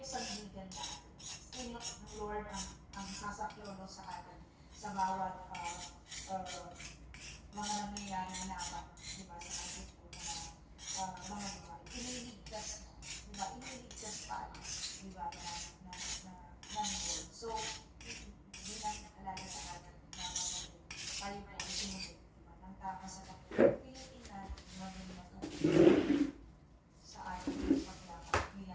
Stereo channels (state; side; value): identical; both; correlation 1.00